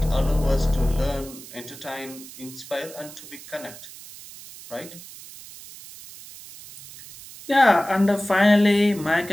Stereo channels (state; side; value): noise; right; hiss, 16 dB below the sound